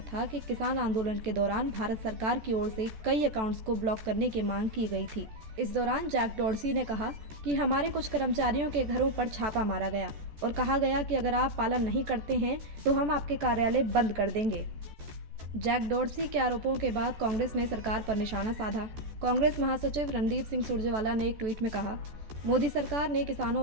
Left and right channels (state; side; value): late; left; 14 ms